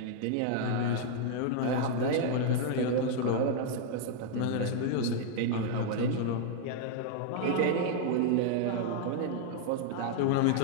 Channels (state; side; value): different; both; correlation -0.01